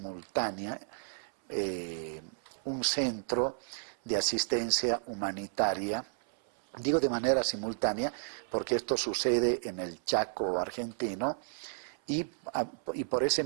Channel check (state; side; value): silent; left; 56 dB below the other